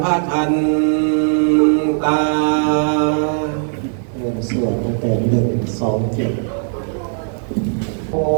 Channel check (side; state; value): left; silent; digital silence